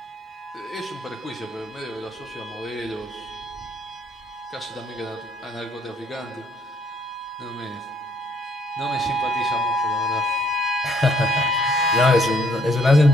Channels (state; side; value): normal; both; correlation 0.66